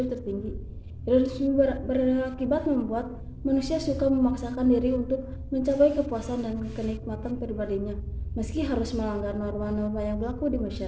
tertinggi. Hedonisme berakibat membuat manusia suka memaksakan diri untuk mencapai kepuasan dan kenikmatan pribadinya, meski harus melanggar norma-norma yang berlaku di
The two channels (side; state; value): both; identical; correlation 1.00